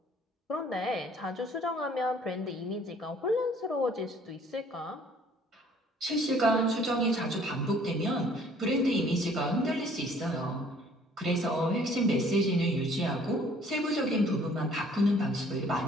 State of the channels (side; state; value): both; normal; correlation 0.57